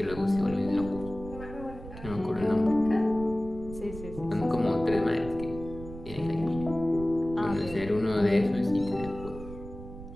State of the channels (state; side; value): noise; right; rumble, 13 dB below the sound